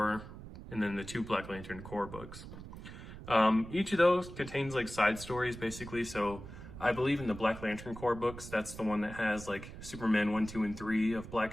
and then the 2 Black Lantern Corps books. Each of those contains side stories basically. So I believe in the Black Lantern Corps books, that's the one that has Superman 1, 2, and 3 of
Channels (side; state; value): right; noise; rumble, 13 dB below the sound